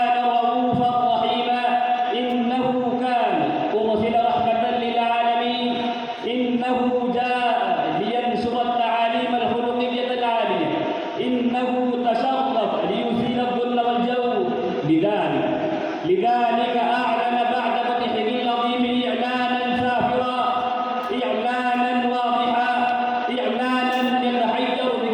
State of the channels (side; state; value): both; identical; correlation 1.00